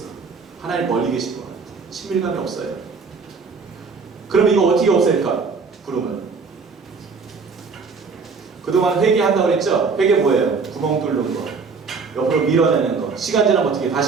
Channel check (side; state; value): left; quieter; 4.9 dB